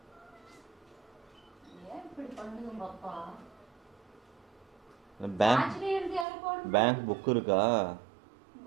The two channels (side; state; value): left; drops out; at 6.2 s